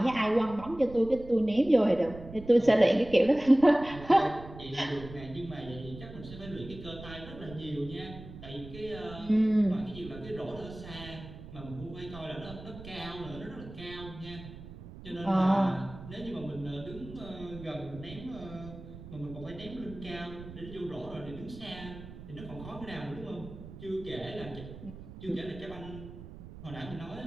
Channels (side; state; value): right; noise; rumble, 14 dB below the sound